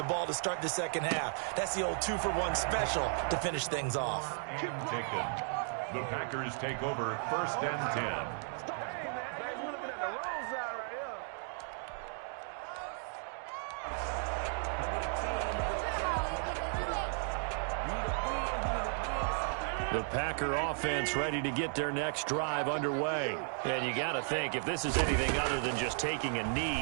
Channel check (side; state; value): left; silent; 55 dB below the other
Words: ball to start the second half. That's the old 2-for-1 special to finish things off. Taken. The Packers take over 1st and 10. Hey, man, we're looking at the wrong side right here. The Packer offense ready to get their next drive underway. And you got to think, if this is anything other than just taking a